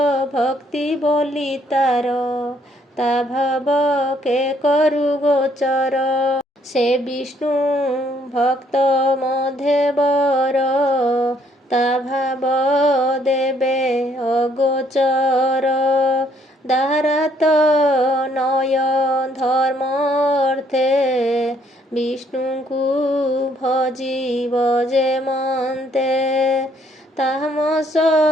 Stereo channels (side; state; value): both; normal; correlation 0.67